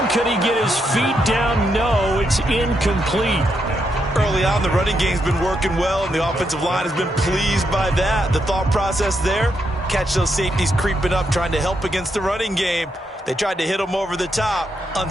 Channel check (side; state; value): both; normal; correlation 0.80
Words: Could he get his feet down? No, it's incomplete. Early on, the running game's been working well, and the offensive line has been pleased by that. The thought process there, catch those safeties creeping up, trying to help against the running game. They tried to hit them over the top,